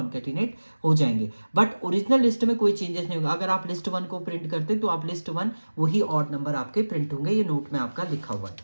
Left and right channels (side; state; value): both; inverted; correlation -1.00